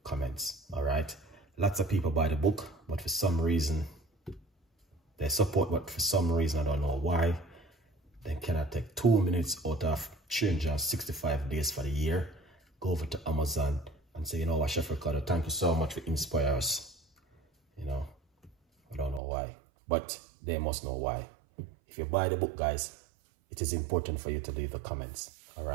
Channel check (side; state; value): left; drops out; at 19.2 s